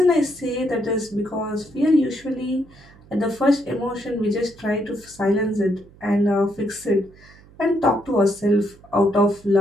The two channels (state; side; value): noise; right; hum, 25 dB below the sound